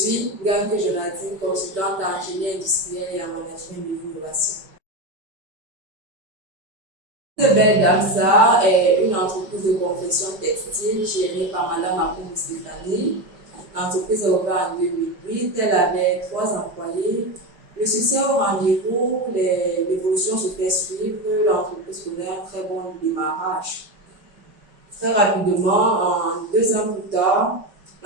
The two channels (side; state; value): left; late; 5.2 ms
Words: Ganke Jonathan, consultante en ingénierie industrielle et en management de l'innovation. Belle Dame Salle est une entreprise de confection textile gérée par Madame Akoum Stéphanie. L'entreprise est ouverte en 2008, elle avait 3 employés. Le succès au rendez-vous, l'évolution se fait suivre, l'entreprise connaît un très bon démarrage. Très rapidement, en 2 ans plus tard,